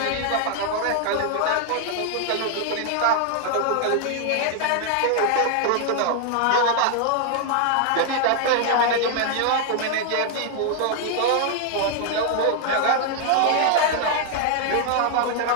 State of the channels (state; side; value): different; both; correlation 0.00